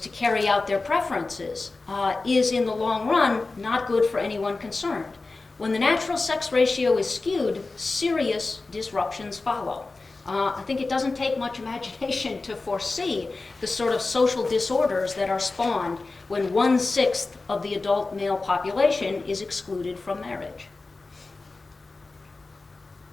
carry out their preferences is, in the long run, not good for anyone concerned. When the natural sex ratio is skewed, serious disruptions follow. I think it doesn't take much imagination to foresee the sort of social disorders that are spawned when 1/6 of the adult male population is excluded from marriage.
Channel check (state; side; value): quieter; right; 3.6 dB